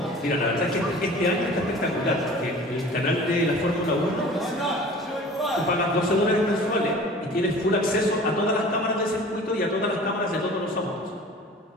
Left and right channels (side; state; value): both; normal; correlation 0.43